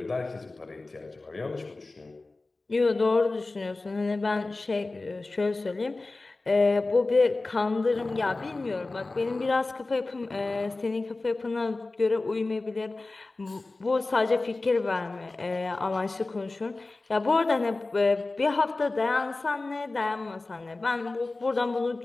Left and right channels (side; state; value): right; quieter; 3.3 dB